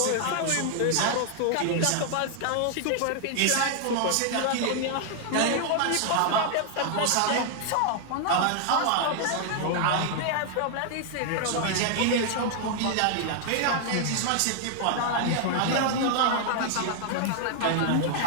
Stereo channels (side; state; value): both; different; correlation 0.00